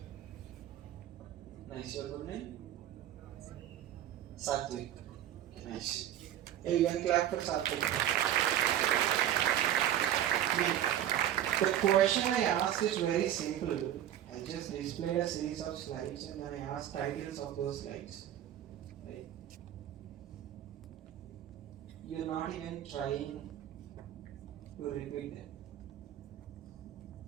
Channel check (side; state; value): left; quieter; 11.4 dB